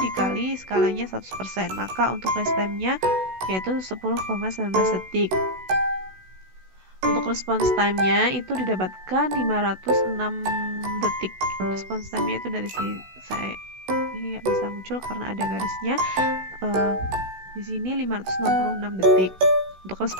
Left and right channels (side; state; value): left; late; 16 ms